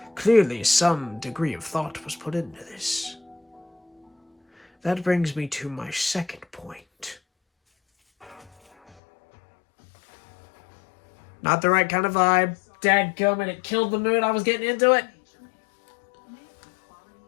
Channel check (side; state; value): right; drops out; at 9.0 s